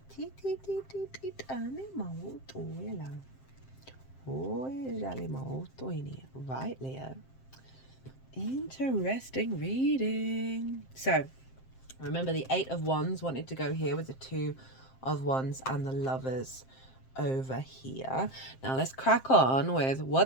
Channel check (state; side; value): late; right; 7.6 ms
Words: Right, Leo. Interesting reading. So, remember the 8 of Wands wanted to go here with the 2 of Wands and the Lovers over here. Now let's crack on with